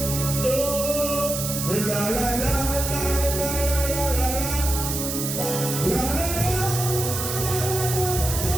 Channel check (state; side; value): noise; right; hiss, 3 dB below the sound